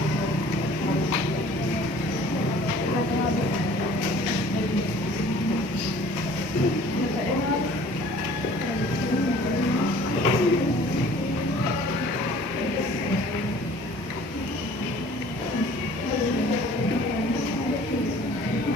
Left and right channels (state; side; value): normal; both; correlation 0.50